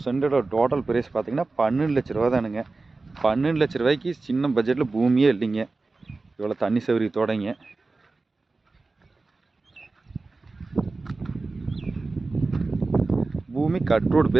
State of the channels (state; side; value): quieter; left; 3.6 dB